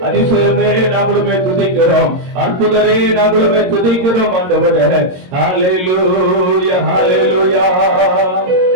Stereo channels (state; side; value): late; left; 22 ms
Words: அதிசயமே நாங்களுமே துதிக்கிறோம், அற்புதரே நாங்களுமே துதிக்கிறோம் ஆண்டவரே. ஹalleluya ஹalleluya.